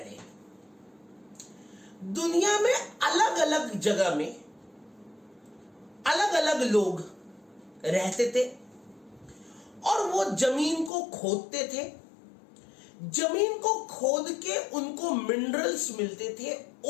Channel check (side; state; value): right; drops out; at 10.9 s